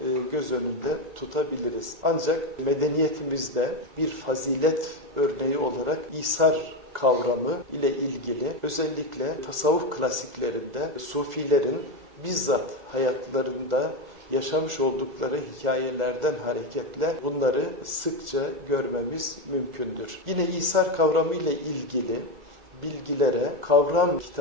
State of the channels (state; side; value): late; left; 2.3 ms